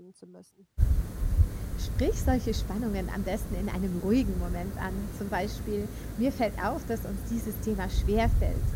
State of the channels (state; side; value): identical; both; correlation 1.00